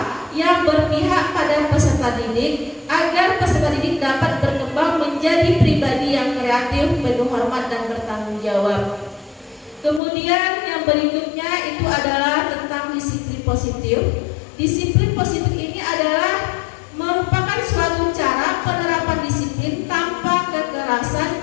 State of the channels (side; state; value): right; drops out; at 10.0 s